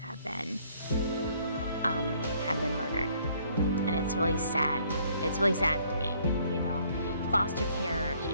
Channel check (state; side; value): inverted; both; correlation -0.64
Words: have been murdered. And it's really sad. It's really sad for me, you know. Foster care, it